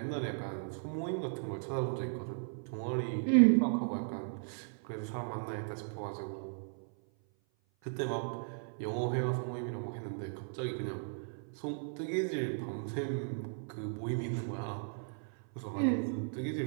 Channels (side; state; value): left; silent; 54 dB below the other